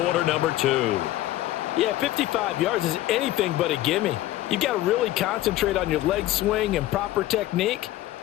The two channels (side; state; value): right; quieter; 15.2 dB